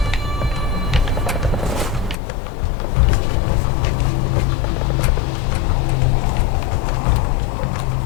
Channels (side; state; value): right; drops out; at 2.1 s